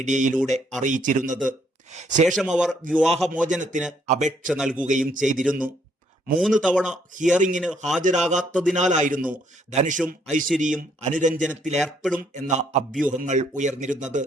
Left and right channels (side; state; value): both; normal; correlation 0.70